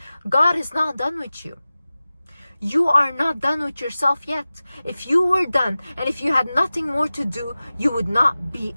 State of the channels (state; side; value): inverted; both; correlation -0.96